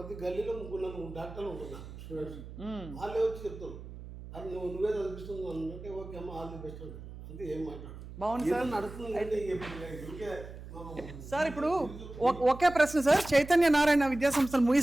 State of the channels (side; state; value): right; noise; hum, 13 dB below the sound